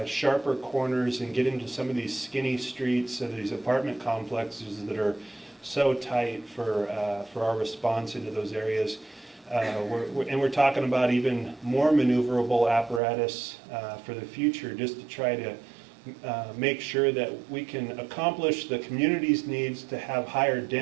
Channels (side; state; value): left; drops out; at 13.0 s